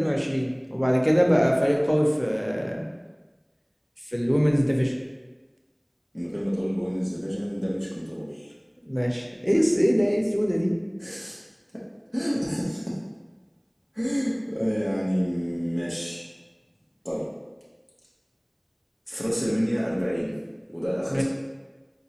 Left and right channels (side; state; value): both; identical; correlation 1.00